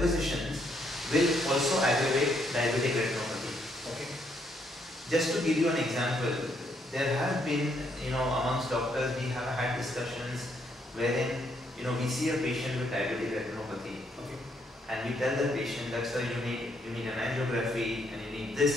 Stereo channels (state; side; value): normal; both; correlation 0.73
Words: will also aggravate diabetic retinopathy. Just to give you an example, there have been, amongst doctors, we have had discussions wherein, we see a patient with diabetic retinopathy. And we tell the patient that, sir, you need an angiography, and you need this,